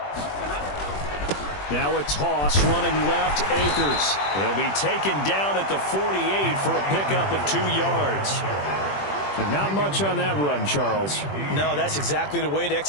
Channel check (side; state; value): right; late; 21 ms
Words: Now a toss running left, Akers. He'll be taken down at the 48 for a pickup of 2 yards. But not much on that run, Charles. No, that's exactly the way to